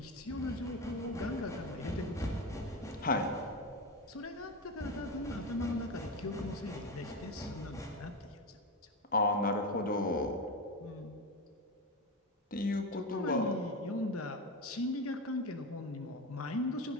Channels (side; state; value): both; normal; correlation 0.19